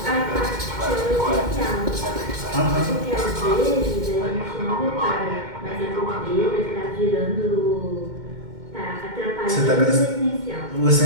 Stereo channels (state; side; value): late; left; 2.1 ms